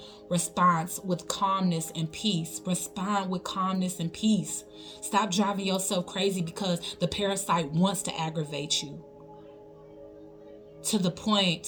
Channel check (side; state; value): both; identical; correlation 1.00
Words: response with calmness and peace. Respond with calmness and peace. Stop driving yourself crazy because the parasite wants to aggravate you to the